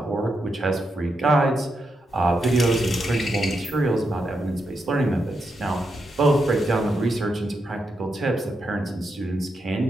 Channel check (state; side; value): normal; both; correlation 0.84